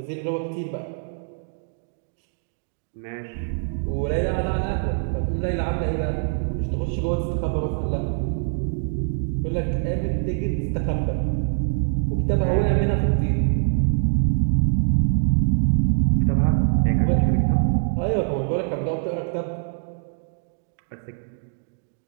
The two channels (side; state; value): left; silent; digital silence